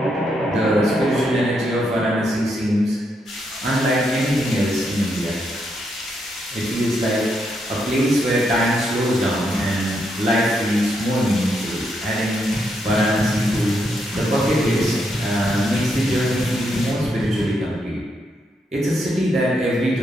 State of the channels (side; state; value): both; normal; correlation 0.79